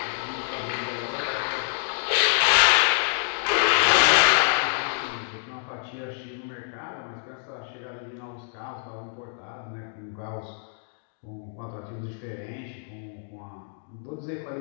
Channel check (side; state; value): right; silent; digital silence